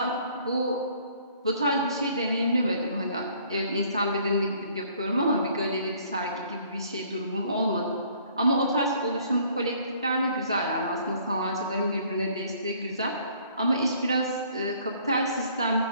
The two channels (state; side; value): inverted; both; correlation -0.59